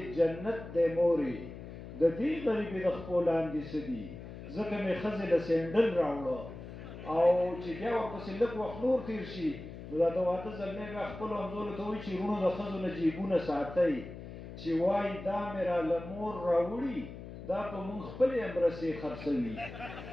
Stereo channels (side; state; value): left; noise; hum, 12 dB below the sound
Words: جنت دی مورې د دې غریبې د خپو لاندې څه دي ځکه مې ښځې له سینډل راوړه او چې بیا ورپسې لږ وخت نور تېر شي نو دا د واده زلمی بیا خپلو همزولو ته وایي چې وروڼو د ښځو نه جیبونه ساتئ چې وایي دا مې راله مور راوړي دا په مونږ خپلې امرسې خرڅوي